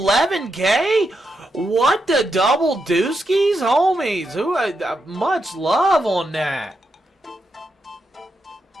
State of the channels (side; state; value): both; normal; correlation 0.84